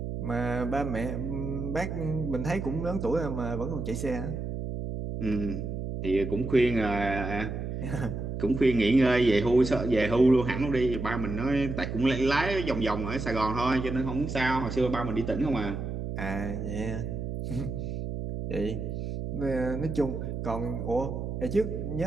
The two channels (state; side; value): noise; right; hum, 4 dB below the sound